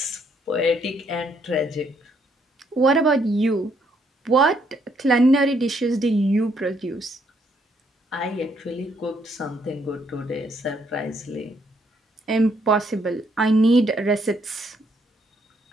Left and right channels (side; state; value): both; normal; correlation 0.71